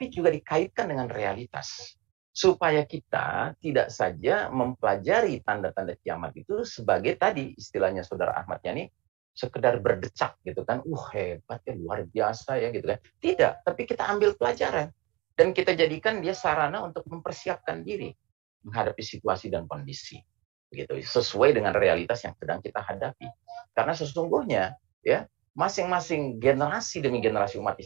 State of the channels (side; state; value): left; quieter; 23.7 dB